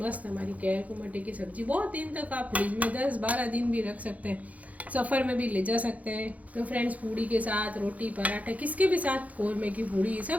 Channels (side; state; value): left; late; 0.071 ms